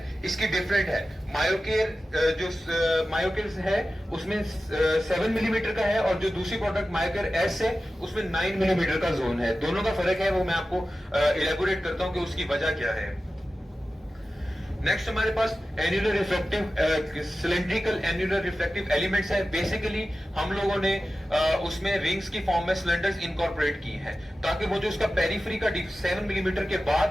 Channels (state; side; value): normal; both; correlation 0.94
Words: इसकी डिफरेंट है। मायोकेयर जो मायोकेयर है उसमें 7 मिलीमीटर का है, और जो दूसरी प्रोडक्ट मायोकेयर एस है उसमें 9 मिलीमीटर का जोन है। दोनों का फर्क है, वो मैं आपको इलेबोरेट करता हूं कि उसकी वजह क्या है। नेक्स्ट हमारे पास annular reflective cylindrical annular reflective elements है। बेसिकली हम लोगों ने उसमें रिंग्स की फॉर्म में सिलेंडर्स इनकॉर्पोरेट की हैं, ताकि वो जो उसका पेरिफेरी का 7 मिलीमीटर के